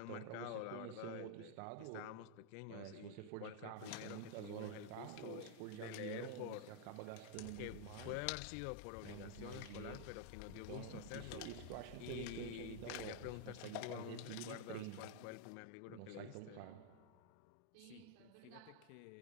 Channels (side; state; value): both; different; correlation 0.00